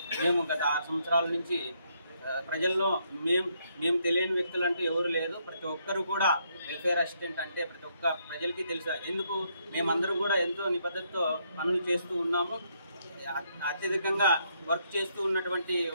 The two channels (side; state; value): both; inverted; correlation -0.74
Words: మేము గత 6 సంవత్సరాల నుంచి ప్రజల్లో మేము తెలియని వ్యక్తులు అంటూ ఎవరు లేదు. ప్రతి ఒక్కరు కూడా వెల్ఫేర్ అసిస్టెంట్ అంటే ప్రతి ఒక్క ప్రజలకి తెలుసు. ఎందుకు మేమందరూ కూడా ఎంతో నిబద్ధతతో పనులు చేస్తూ ఉన్నాము. అత్యధికంగా వర్క్ చేస్తూ ఉన్నటువంటి